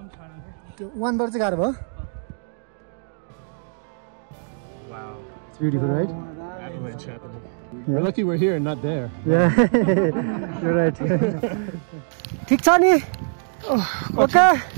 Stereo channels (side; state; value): left; silent; digital silence